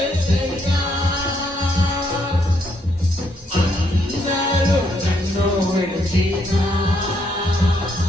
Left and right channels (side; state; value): both; normal; correlation 0.73